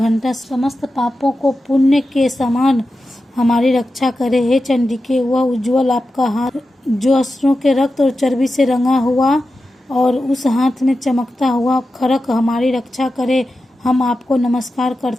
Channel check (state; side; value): normal; both; correlation 0.92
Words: समस्त पापों को पुण्य के समान हमारी रक्षा करे। हे चंडिके वह उज्जवल आपका हाथ जो असुरों के रक्त और चर्बी से रंगा हुआ और उस हाथ में चमकता हुआ खड़क हमारी रक्षा करे, हम आपको नमस्कार